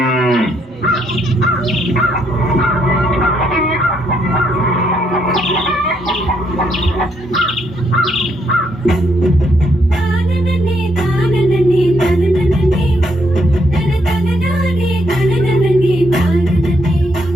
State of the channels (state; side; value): normal; both; correlation 0.74